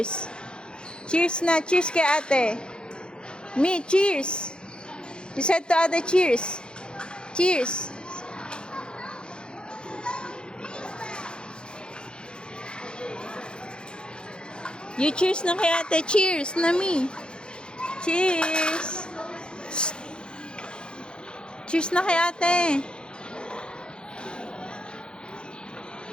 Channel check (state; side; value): late; right; 0.050 ms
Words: Cheers na! Cheers kay ate! Me, cheers! You said to ate, cheers! Cheers! You cheers na kay ate! Cheers na me! Cheers! Cheers na kay ate!